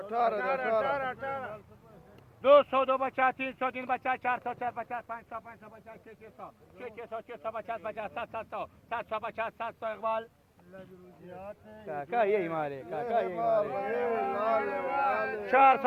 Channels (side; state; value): both; identical; correlation 1.00